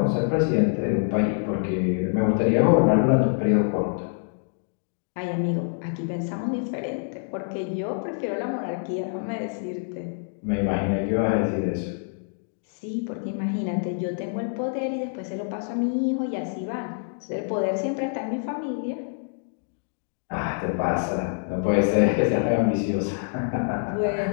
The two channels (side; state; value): right; silent; digital silence